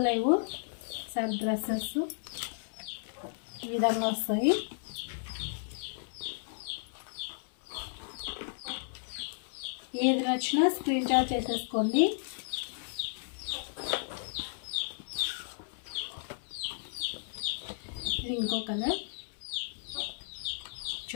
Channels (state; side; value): silent; right; 55 dB below the other